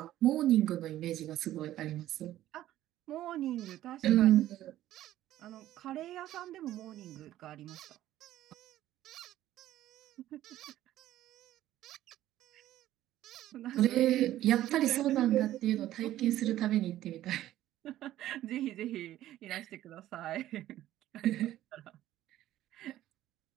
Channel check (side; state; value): left; quieter; 13.7 dB